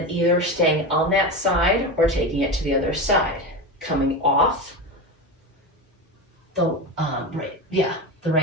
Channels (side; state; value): both; normal; correlation 0.21